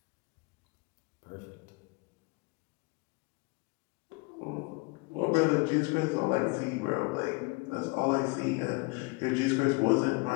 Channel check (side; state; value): right; quieter; 27.8 dB